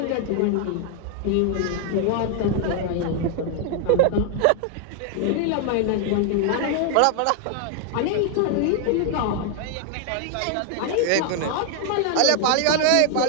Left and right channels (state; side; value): different; both; correlation 0.00